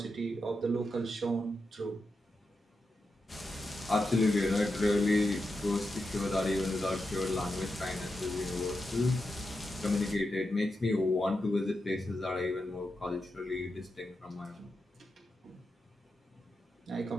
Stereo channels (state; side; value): normal; both; correlation 0.88